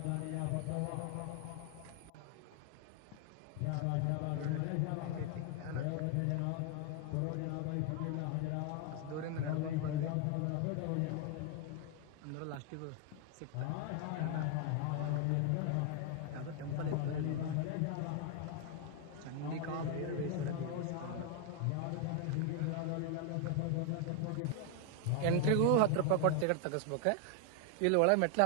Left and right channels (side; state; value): both; different; correlation 0.00